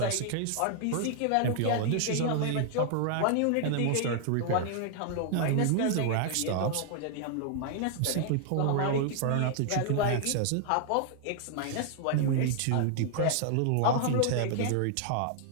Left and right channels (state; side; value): different; both; correlation 0.00